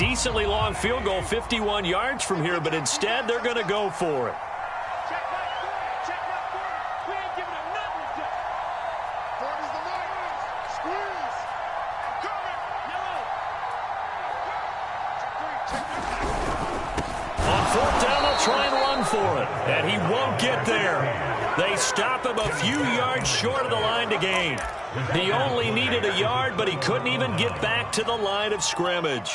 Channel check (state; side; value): identical; both; correlation 1.00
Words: long field goal, 51 yards from here, but instead they're going to go for it. And he won't get there. They stop him a few yards short of the line to gain. He only needed a yard, but he couldn't even get back to the line of